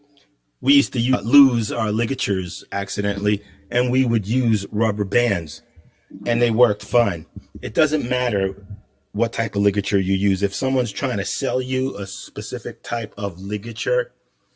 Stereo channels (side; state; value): both; identical; correlation 1.00